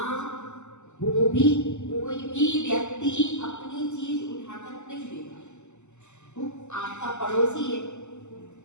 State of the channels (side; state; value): right; late; 0.83 ms